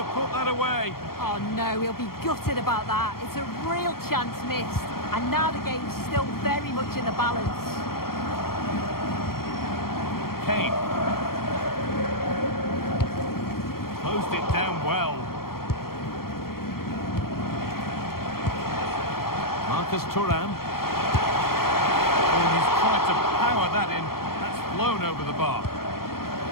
put that away. Oh no, he'll be gutted about that. It's a real chance missed. And now the game's still very much in the balance. Kane. Closed it down well. Thuram. Oh, he's tried to power that in. That's flown over the bar.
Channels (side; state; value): right; late; 0.93 ms